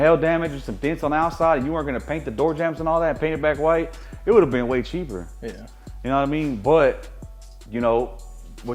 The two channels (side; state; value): both; identical; correlation 1.00